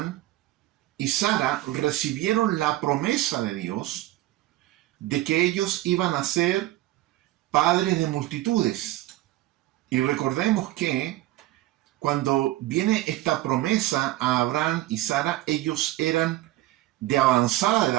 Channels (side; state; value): left; quieter; 16.2 dB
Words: y Sara recibieron la promesa de Dios de que ellos iban a ser padres de multitudes. Y recordemos que cuando viene esta promesa a Abraham y Sara, ellos eran de avanzada